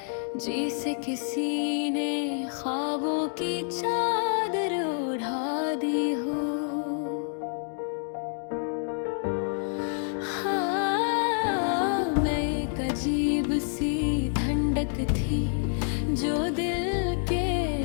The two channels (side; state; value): right; silent; digital silence